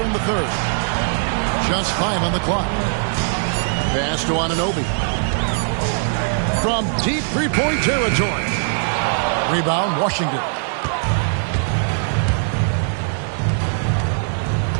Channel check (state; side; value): silent; left; digital silence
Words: in the third. Just 5 on the clock. Pass to Anunoby. From deep three-point territory. Rebound, Washington.